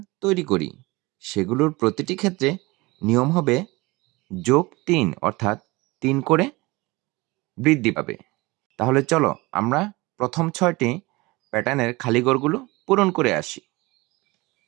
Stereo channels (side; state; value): left; quieter; 22.6 dB